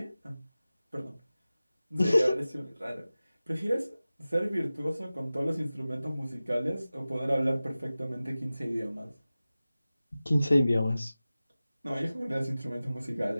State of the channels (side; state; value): both; inverted; correlation -0.96